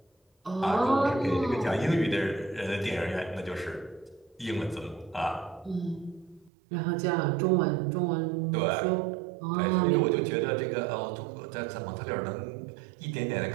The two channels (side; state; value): left; drops out; at 6.5 s